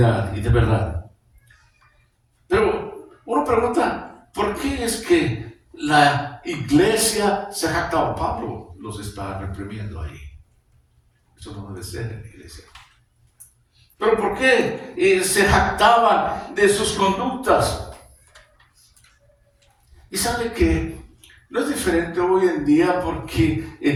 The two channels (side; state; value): both; identical; correlation 1.00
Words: y de verdad. Pero uno pregunta, ¿por qué es que la iglesia se jactaba? Pablo los está reprimiendo ahí. Eso no debe ser en la iglesia. ¿Pero por qué se jactaban de sus conductas? Y sabe que no es diferente hoy en día, porque